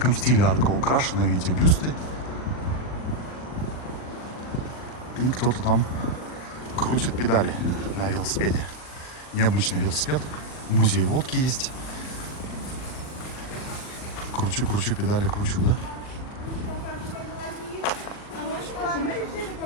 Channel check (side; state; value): right; late; 39 ms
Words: стиле арка украшена, видите, бюсты. И кто-то там крутит педали на велосипеде. Необычный велосипед. Музей водки есть. Кручу педали, кручу, да? Мы решили